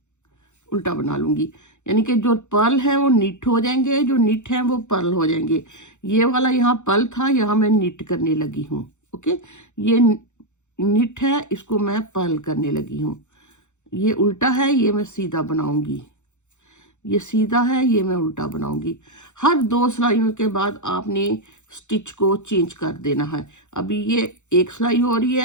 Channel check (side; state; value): right; late; 0.84 ms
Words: उल्टा बना लूंगी, यानी कि जो पर्ल है वो निट हो जाएंगे, जो निट है वो पर्ल हो जाएंगे। ये वाला यहाँ पर्ल था, यहाँ मैं निट करने लगी हूँ। ओके, ये निट है, इसको मैं पर्ल करने लगी हूँ। ये उल्टा है, ये मैं सीधा बनाऊंगी। ये सीधा है, ये मैं उल्टा बनाऊंगी। हर 2 सिलाइयों के बाद आपने स्टिच को चेंज कर देना है। अभी ये एक सिलाई हो रही